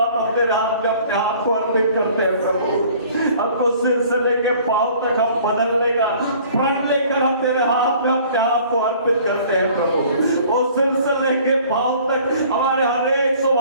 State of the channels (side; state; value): both; inverted; correlation -0.52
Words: हम तेरे हाथ में अपने आप को अर्पित करते हैं प्रभु। हमको सिर से लेके पांव तक हम बदलने का प्रण लेकर हम तेरे हाथ में अपने आप को अर्पित करते हैं प्रभु। वो सिर से लेके पांव तक हमारे हर एक